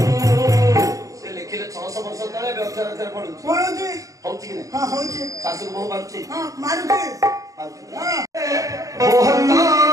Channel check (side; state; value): left; late; 0.16 ms